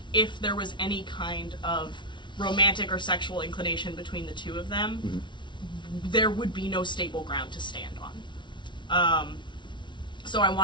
if there was any kind of romantic or sexual inclination between the two of them, there would be no stable ground to stand on. So I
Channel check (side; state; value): right; late; 0.23 ms